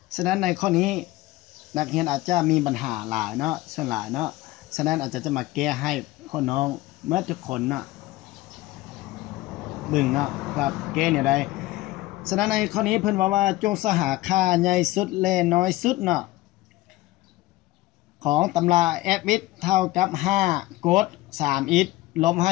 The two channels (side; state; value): right; quieter; 18.0 dB